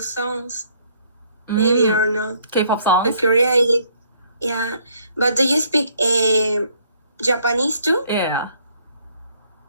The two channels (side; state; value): both; inverted; correlation -0.65